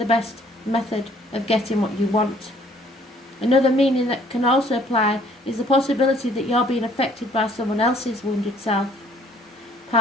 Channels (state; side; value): normal; both; correlation 0.60